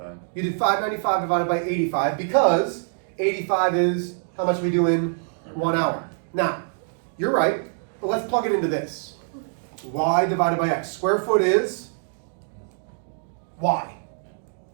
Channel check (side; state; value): left; silent; digital silence